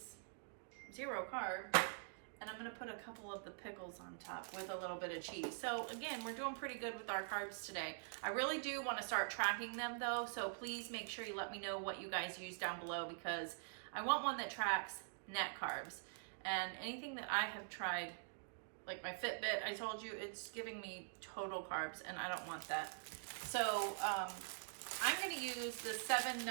0 carb, and I'm gonna put a couple of the pickles on top with a little bit of cheese. So again, we're doing pretty good with our carbs today. I really do wanna start tracking them though, so please make sure you let me know what you guys use down below, because I want one that tracks net carbs. And anything that I have tried, like my Fitbit, I told you, it's giving me total carbs, and I don't want that. So I'm gonna use the 7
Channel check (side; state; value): left; silent; digital silence